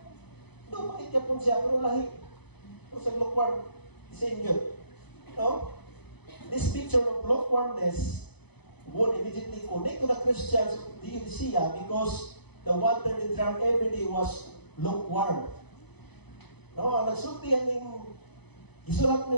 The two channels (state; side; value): late; right; 0.98 ms